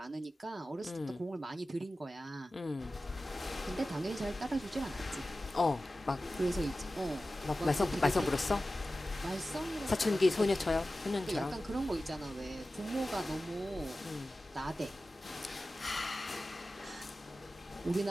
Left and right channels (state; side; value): normal; both; correlation 0.95